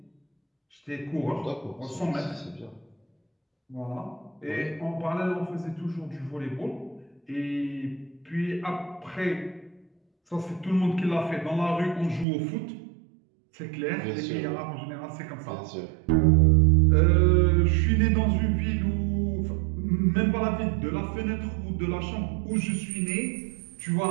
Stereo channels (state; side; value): drops out; left; at 12.2 s